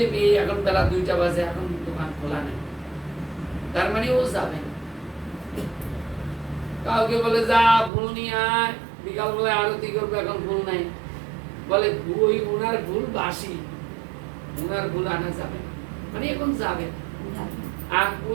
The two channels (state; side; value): drops out; left; at 7.9 s